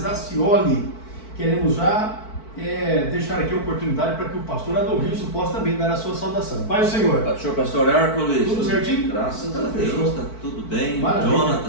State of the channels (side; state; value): right; late; 4.5 ms